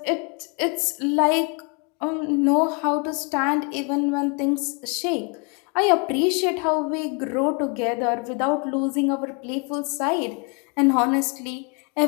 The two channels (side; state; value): right; quieter; 33.3 dB